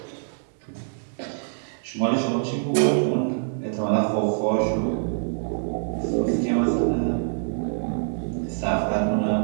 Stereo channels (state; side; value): silent; left; digital silence